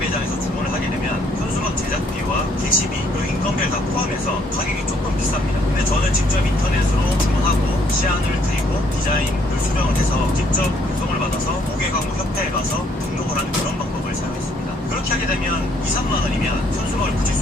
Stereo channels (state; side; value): normal; both; correlation 0.67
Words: 주문을 하게 되면 현수막 제작비와 게시비 그리고 인건비를 다 포함해서 가격이 조금 비쌉니다. 근데 저는 직접 인터넷으로 주문하고 시안을 드리고 디자인을 수정을 해서 직접 배송을 받아서 고객광고협회에 가서 등록을 하는 그런 방법을 사용했습니다. 그렇게 하게 되면 2, 3만 원이면 현수막을 붙일